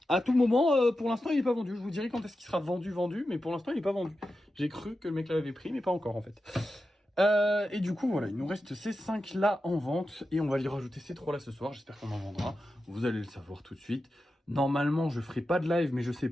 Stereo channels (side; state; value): both; normal; correlation 0.91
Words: à tout moment, pour l'instant, il n'est pas vendu. Je vous dirai quand est-ce qu'il sera vendu, mais pour l'instant, il n'est pas vendu. J'ai cru que le mec l'avait pris, mais pas encore en fait. Et du coup, voilà, il nous reste ces 5 là en vente. Et on va y rajouter ces 3 là ce soir. J'espère qu'on en vendra. Vous allez le savoir tout de suite. Normalement, je ferai pas de live, mais je sais